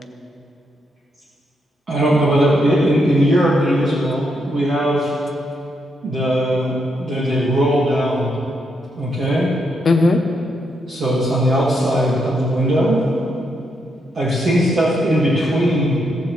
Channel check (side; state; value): both; normal; correlation 0.79